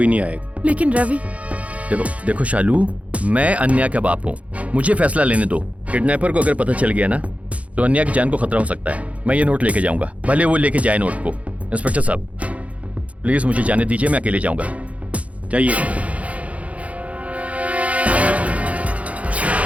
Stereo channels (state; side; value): late; left; 0.066 ms